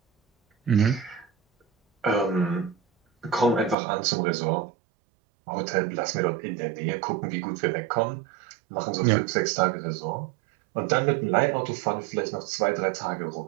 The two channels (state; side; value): drops out; left; at 3.8 s